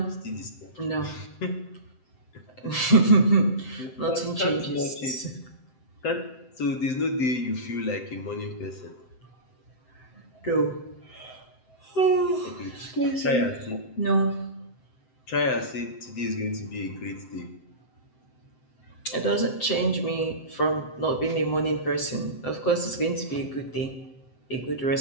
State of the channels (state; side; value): late; right; 7.7 ms